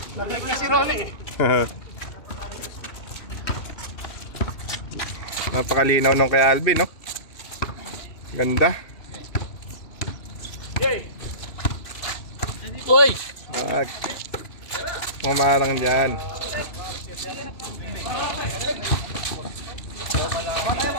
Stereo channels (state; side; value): late; right; 2.7 ms